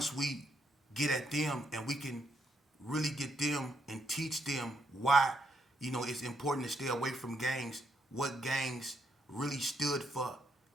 we get at them and we can really get them and teach them why, you know, it's important to stay away from gangs, what gangs really stood for,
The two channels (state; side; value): normal; both; correlation 0.76